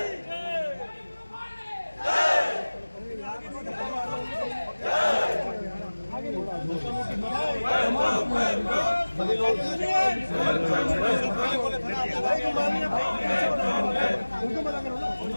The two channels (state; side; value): inverted; both; correlation -1.00